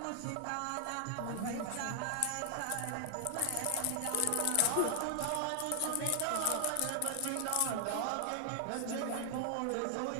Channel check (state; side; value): different; both; correlation 0.00